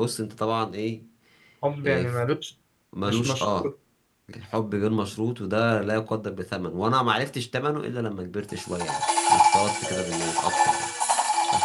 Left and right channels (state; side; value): identical; both; correlation 1.00